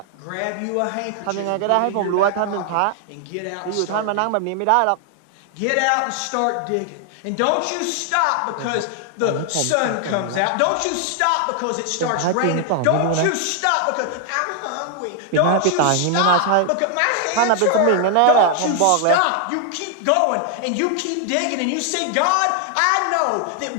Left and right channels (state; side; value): different; both; correlation 0.00